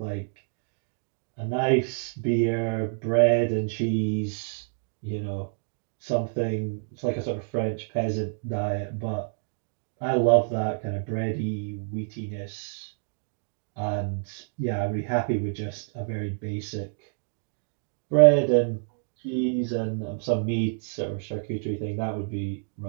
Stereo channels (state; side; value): silent; left; digital silence